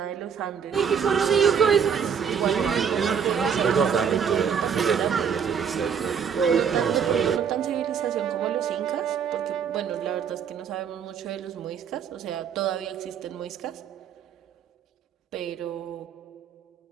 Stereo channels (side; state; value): left; quieter; 7.2 dB